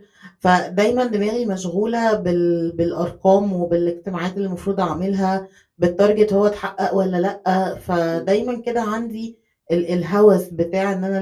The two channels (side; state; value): both; identical; correlation 1.00